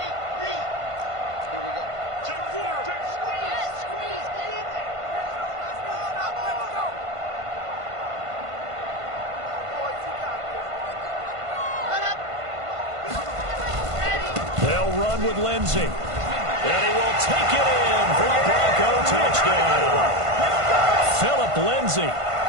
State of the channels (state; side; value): late; left; 1.5 ms